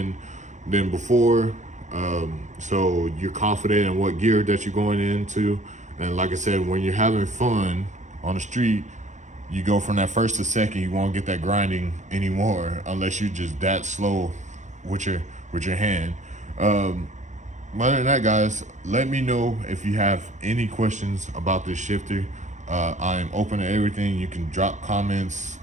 than before. So you're confident in what gear that you're going into. And like I said, when you're having fun on the street, you go from that first to second. You won't get that grinding anymore unless you're just that slow with your hand. Other than that, guys, let me know if you have any questions about this shifter. I'm open to everything. You can drop comments.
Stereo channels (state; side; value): late; left; 0.35 ms